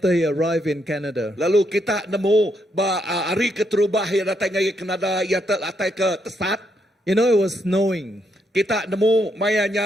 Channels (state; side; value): normal; both; correlation 0.77